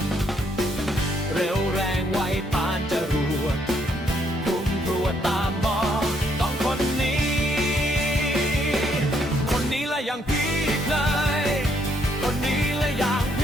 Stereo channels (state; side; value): normal; both; correlation 0.71